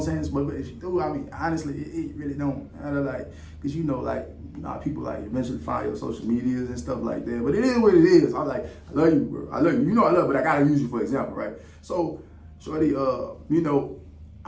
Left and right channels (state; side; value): identical; both; correlation 1.00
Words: I'm saying? But if she do, I mean, honestly, it really don't. I don't like, because people like eventually find your social medias and stuff like that. But it is what it is. I'm like, I love you, bro. I love you. You know I love, but I gotta use you for example, right? So, shorty,